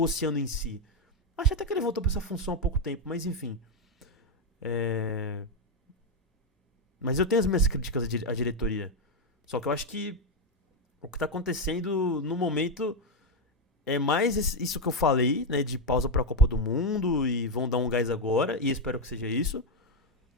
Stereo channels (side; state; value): both; normal; correlation 0.04